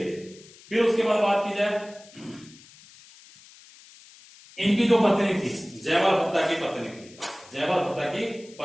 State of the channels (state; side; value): noise; left; hiss, 23 dB below the sound